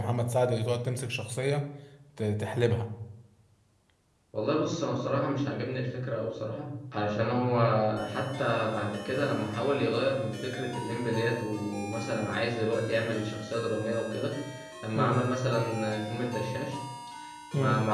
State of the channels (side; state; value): both; identical; correlation 1.00